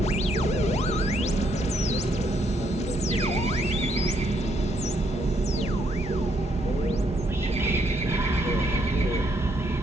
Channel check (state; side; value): normal; both; correlation 0.73